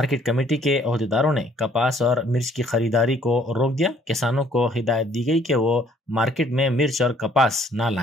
कमेटी के अहदेदारों ने कपास और मिर्च की खरीदारी को रोक दिया. किसानों को हिदायत दी गई कि वो मार्केट में मिर्च और कपास ना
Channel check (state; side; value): normal; both; correlation 0.61